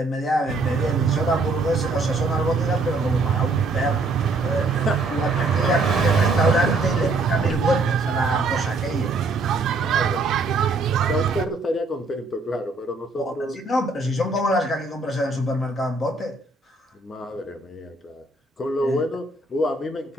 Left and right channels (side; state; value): left; quieter; 3.2 dB